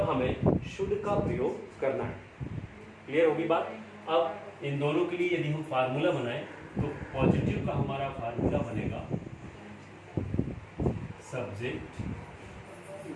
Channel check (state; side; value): identical; both; correlation 1.00